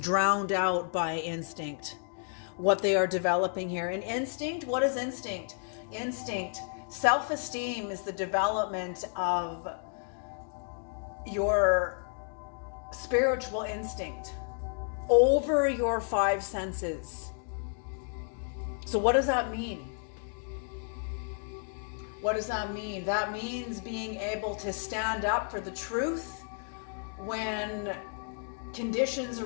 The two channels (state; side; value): silent; right; 57 dB below the other